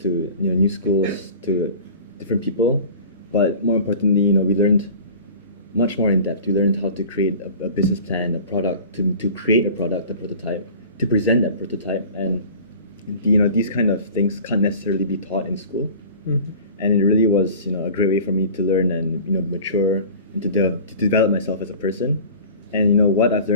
to new schools, to different people. But more importantly, we learned much more in depth. We learned how to create a business plan, a product, to create a product, a prototype, to present that prototype, and these kind of things can't necessarily be taught in school. Mm-hmm. And it really was a great way for me to learn and mature and to develop myself as a person. And what I've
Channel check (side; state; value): both; inverted; correlation -0.40